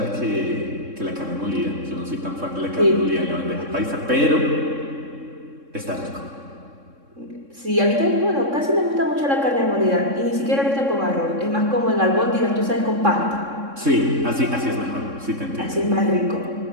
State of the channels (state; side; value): late; left; 3.6 ms